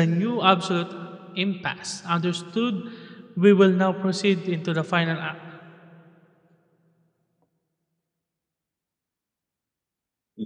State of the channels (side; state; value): both; identical; correlation 1.00